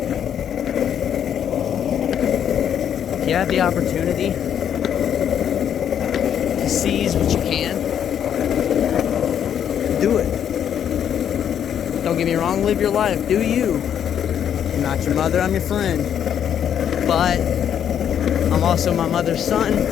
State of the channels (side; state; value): right; quieter; 9.1 dB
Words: If you have the opportunity to seize what you can, do it. Don't get me wrong, live your life. Do you. I'm not your mother, I'm your friend. But I'm also my mother's son.